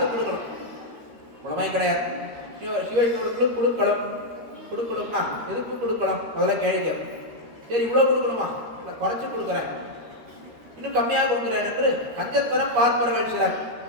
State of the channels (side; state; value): left; late; 13 ms